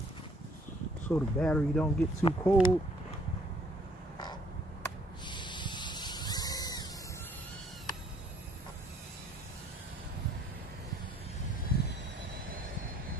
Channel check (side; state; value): both; normal; correlation 0.62